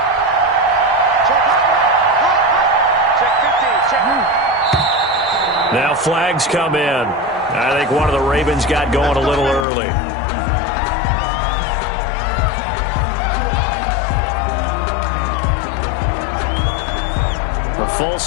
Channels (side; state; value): right; drops out; at 9.7 s